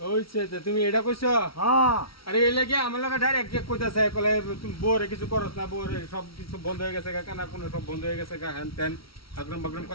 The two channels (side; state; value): right; late; 0.75 ms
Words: ওইছে তুমি এটা কইছো হ্যাঁ আরে এই লাগে আমার লগে ডাইরেক্ট কইতাছে কলে তুমি বউরে কিছু করছ না বউরে সব কিছু বন্ধ হয়ে গেছে কানা কোন সব বন্ধ হয়ে গেছে হ্যান তেন আগরম বাগরম